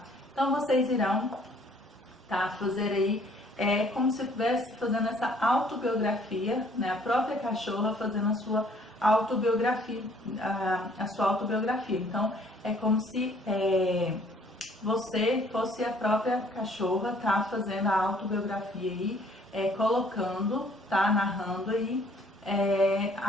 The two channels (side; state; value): both; normal; correlation 0.60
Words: Então, vocês irão, tá, fazer aí, como se estivesse fazendo essa autobiografia, né, a própria cachorra fazendo a sua autobiografia, Então, é como se você fosse a própria cachorra, tá, fazendo a autobiografia aí, colocando, tá, narrando aí